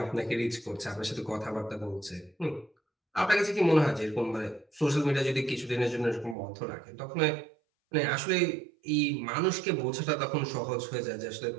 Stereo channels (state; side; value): drops out; left; at 6.4 s